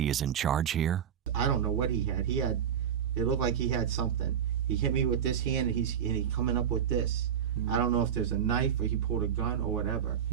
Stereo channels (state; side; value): quieter; left; 8.8 dB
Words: is in charge here? I don't know what he had. It looked like he had something. He hit me with this hand, and he's coming up with this. I don't know if there's a knife or he pulled a gun or whatever.